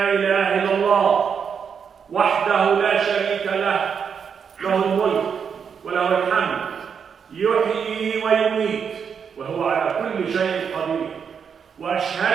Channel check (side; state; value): left; quieter; 6.8 dB